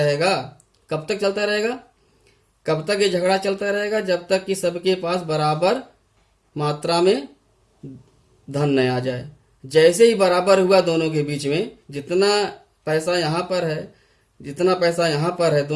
कब तक चलता रहेगा, कब तक ये झगड़ा चलता रहेगा, जब तक कि सबके पास बराबर मात्रा में धन न आ जाए। जैसे ही बराबर हुआ दोनों के बीच में, जितना पैसा यहाँ पर है जितना पैसा यहाँ पर है,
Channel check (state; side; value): identical; both; correlation 1.00